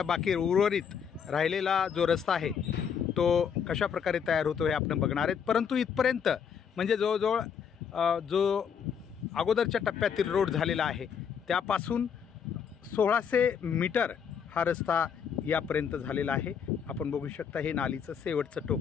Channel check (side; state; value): right; quieter; 7.3 dB